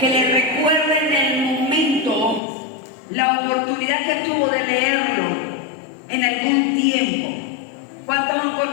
le recuerda en el momento la oportunidad que tuvo de leerlo en algún tiempo? ¿Cuántos han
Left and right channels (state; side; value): drops out; right; at 2.4 s